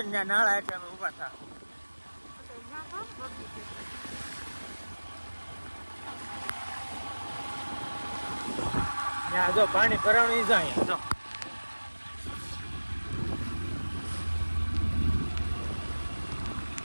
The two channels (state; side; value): inverted; both; correlation -1.00